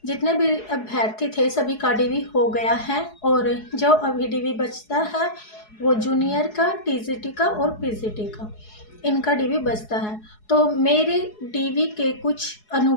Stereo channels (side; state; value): right; late; 4.7 ms